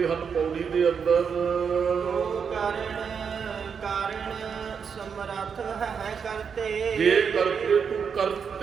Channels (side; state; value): left; quieter; 6.5 dB